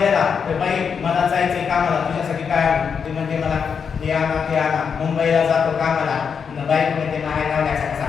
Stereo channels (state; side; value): quieter; right; 6.5 dB